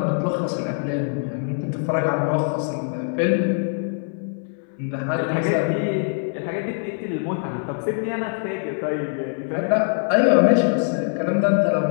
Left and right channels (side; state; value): right; silent; 63 dB below the other